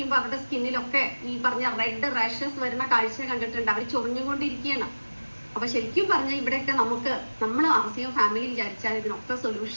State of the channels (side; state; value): both; inverted; correlation -1.00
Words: അവരുടെ സ്കിന്നിലൊക്കെ ഈ പറഞ്ഞ റെഡ് റാഷസ് വരുന്ന കാഴ്ച കണ്ടിട്ടുണ്ട്. അവർ ചൊറിഞ്ഞുകൊണ്ടിരിക്കുകയാണ്. അപ്പൊ ശരിക്കും പറഞ്ഞാൽ ഇവിടെയൊക്കെ നമ്മൾ ആസിയം ഫാമിലി വിചാരിച്ചാൽ ഇതിനൊക്കെ